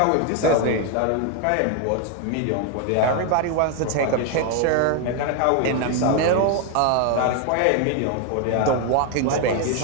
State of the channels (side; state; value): both; different; correlation 0.01